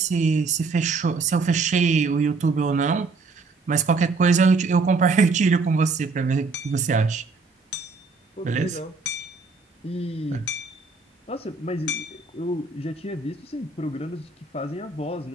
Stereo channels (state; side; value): quieter; left; 4.1 dB